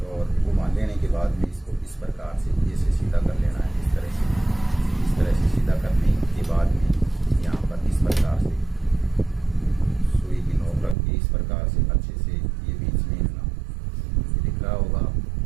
और घुमा लेने के बाद में इसको इस प्रकार से ऐसे सीधा कर लेना है। इस तरह से सीधा करने के बाद में यहाँ पर इस प्रकार से सुई की नोक रख के इस प्रकार से अच्छे से ये बीच में ना दिख रहा होगा,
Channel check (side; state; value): left; drops out; at 11.0 s